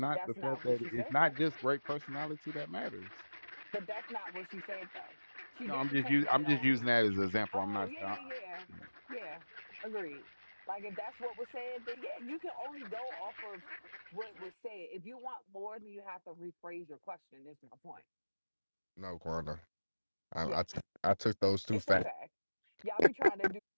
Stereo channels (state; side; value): inverted; both; correlation -1.00